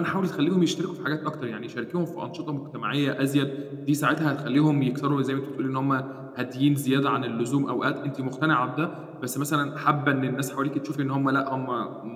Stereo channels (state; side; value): identical; both; correlation 1.00